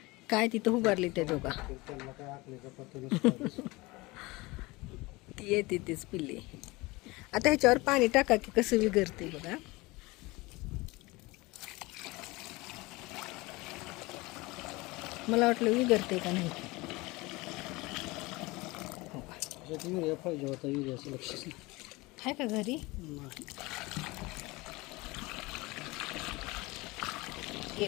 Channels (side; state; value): right; quieter; 22.7 dB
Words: काय तिथं उभारली त्या दोघा तर त्यांना काय आखलीचा पत्ता नसतो. ती येते तीच पिल्ली. आता ह्याच्यावर पाणी टाका की कसं विगरते बघा. मला वाटलं विगरते का नाही. युरिया पाहिजे होता युरियाचं लक्षच नाही. आहे का घरी